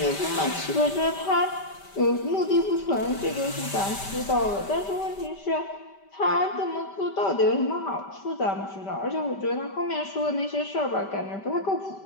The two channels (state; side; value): late; right; 5.1 ms